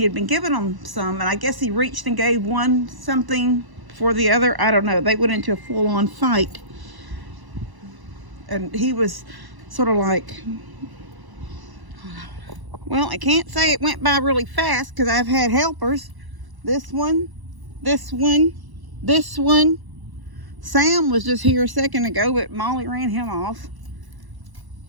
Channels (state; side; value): late; left; 1.0 ms